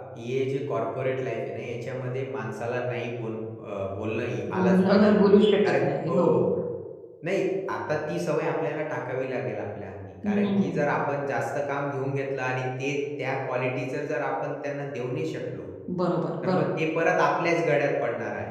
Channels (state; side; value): identical; both; correlation 1.00